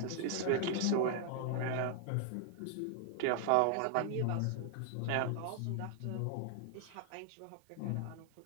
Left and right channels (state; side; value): different; both; correlation 0.00